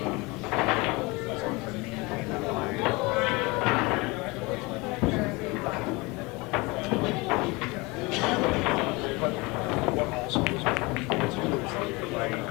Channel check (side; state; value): right; quieter; 24.5 dB